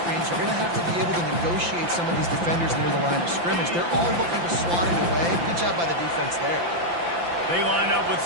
you're going to have to be able to negotiate some of these defenders near the line of scrimmage. They're all looking to swat it away. Good job by the defense there. They line up with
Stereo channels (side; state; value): left; late; 5.8 ms